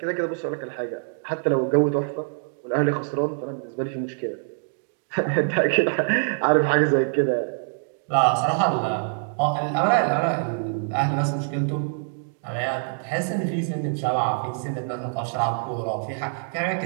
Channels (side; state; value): left; silent; digital silence